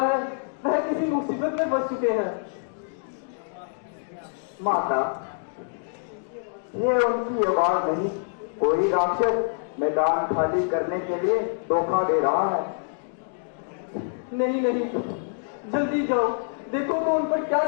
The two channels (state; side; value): silent; right; digital silence